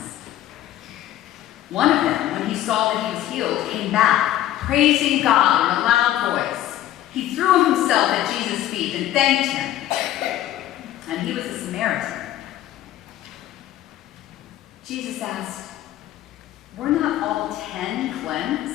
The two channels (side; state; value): right; quieter; 13.1 dB